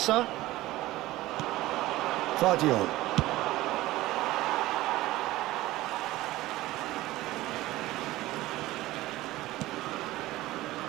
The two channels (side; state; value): left; quieter; 17.3 dB